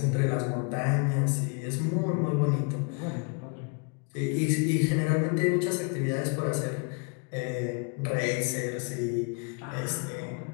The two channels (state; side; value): quieter; right; 36.0 dB